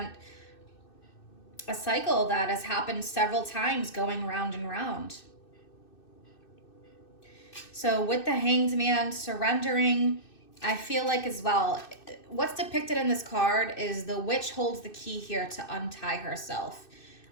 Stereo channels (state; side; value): late; right; 2.6 ms